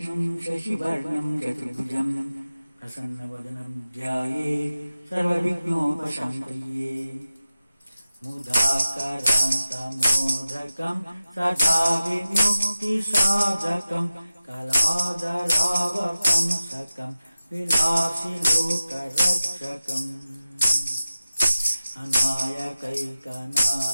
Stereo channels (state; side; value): inverted; both; correlation -0.95